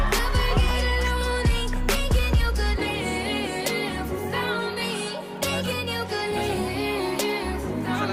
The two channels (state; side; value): identical; both; correlation 1.00